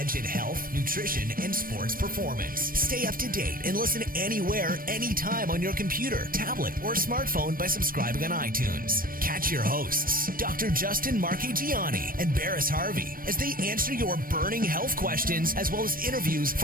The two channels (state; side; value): late; left; 0.41 ms